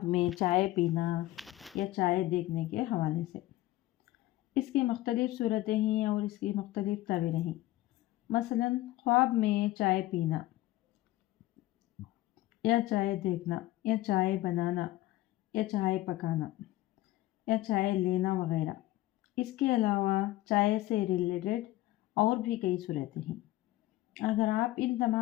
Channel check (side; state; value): right; quieter; 16.5 dB